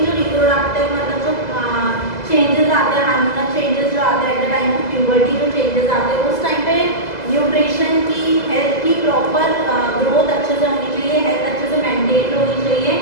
रिप्रोडक्टिव मतलब जो चेंजेस आते हैं, हार्मोनल चेंजेस जो आते हैं at the time of puberty, जो चेंजेस आते हैं उस टाइम पे न्यूट्रिशन की हेल्थ की प्रॉपर ग्रोथ अच्छे से होनी चाहिए, हेल्थ अच्छे से मेंटेन होनी चाहिए।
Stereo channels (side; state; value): right; late; 2.0 ms